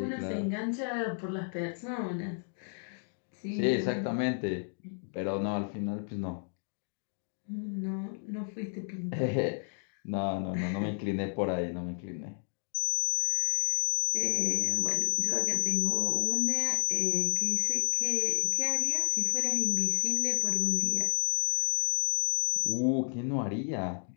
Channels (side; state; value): right; silent; 57 dB below the other